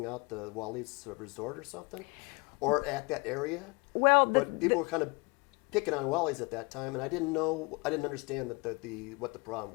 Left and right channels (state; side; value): quieter; right; 28.2 dB